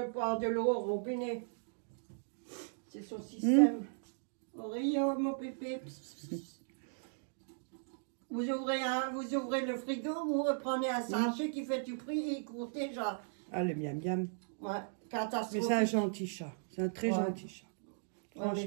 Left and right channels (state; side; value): silent; left; digital silence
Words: boire de l'eau au robinet. C'est son système. Oreo, mon pépé. Vous ouvrez le frigo, vous reprenez un sachet qui fait du prix et il court déjà. Ah, le miam miam. Ouais, Mais catastrophe. c'est un gentil chat. C'est un très gentil chat. Franchement,